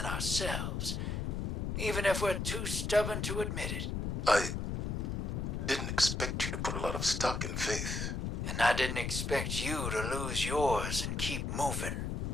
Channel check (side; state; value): left; noise; rumble, 1 dB below the sound